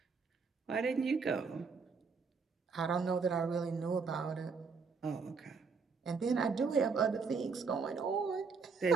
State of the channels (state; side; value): quieter; left; 5.0 dB